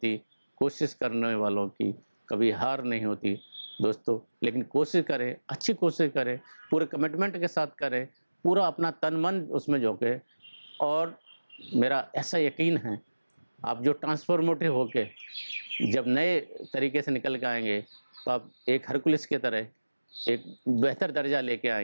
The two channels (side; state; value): both; inverted; correlation -1.00